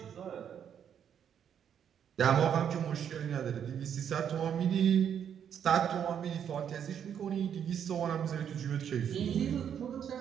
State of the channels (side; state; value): left; quieter; 8.6 dB